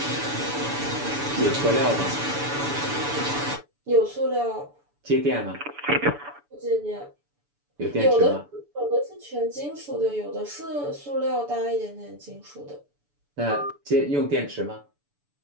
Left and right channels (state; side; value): late; left; 6.9 ms